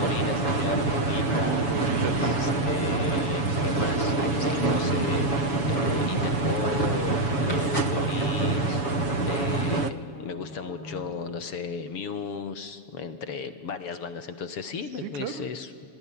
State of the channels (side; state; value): right; late; 7.1 ms